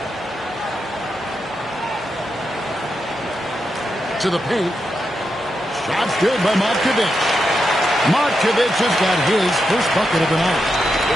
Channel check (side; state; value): both; normal; correlation 0.86